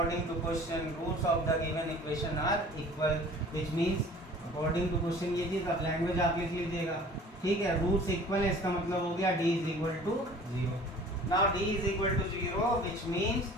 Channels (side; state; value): both; normal; correlation 0.47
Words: to question roots of the given equation are equal, which means according to question ये चीज अब लैंग्वेज आप लिख लीजिएगा। ठीक है, रूट्स इक्वल है, इसका मतलब हो गया d is equal to 0। Now d is equal to 0 which means